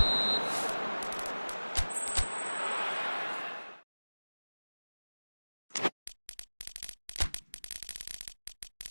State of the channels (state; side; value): inverted; both; correlation -1.00